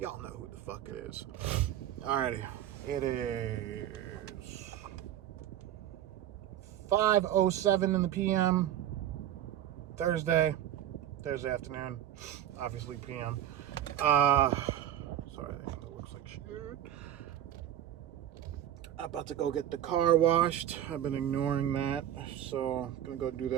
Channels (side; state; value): left; quieter; 11.3 dB